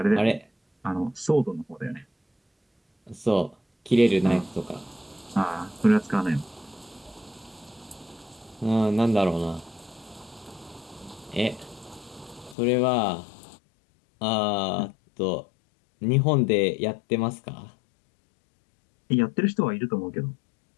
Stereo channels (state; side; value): drops out; right; at 12.6 s